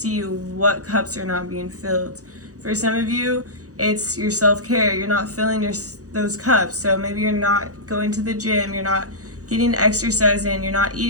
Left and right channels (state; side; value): late; left; 0.66 ms